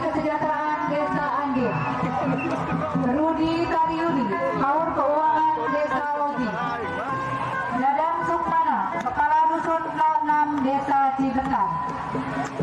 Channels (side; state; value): both; identical; correlation 1.00